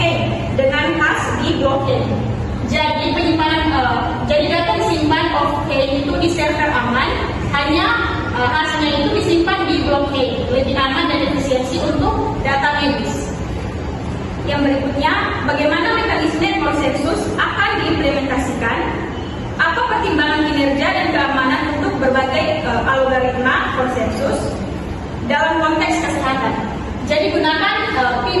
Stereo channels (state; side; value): identical; both; correlation 1.00